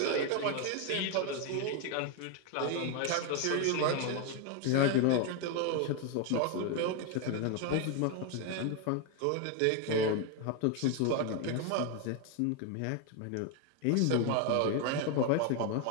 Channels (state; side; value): different; both; correlation 0.01